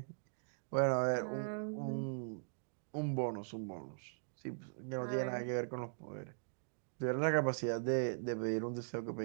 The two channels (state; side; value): silent; left; digital silence